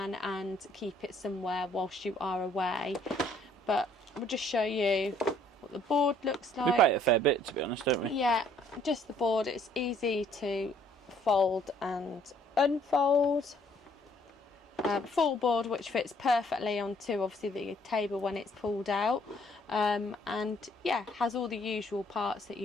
and keep it somewhere whilst you are away. But we'll just show you what the board looks like. We play it a fair bit, to be honest, don't we? Yeah, just the board. It's easy to fold and unfold. Full board, which fits perfectly onto obviously the table when it's pulled out, and yeah, has all the usual parts that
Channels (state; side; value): normal; both; correlation 0.62